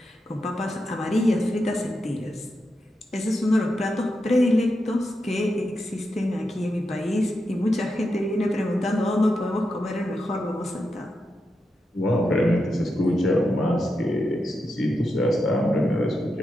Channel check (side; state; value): both; normal; correlation 0.87